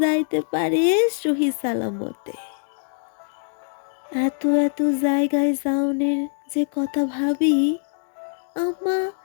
যাইতে পারে সহি সালামতে। এত এত জায়গায় যাওনের যে কথা ভাবি, আম্মা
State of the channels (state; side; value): silent; right; digital silence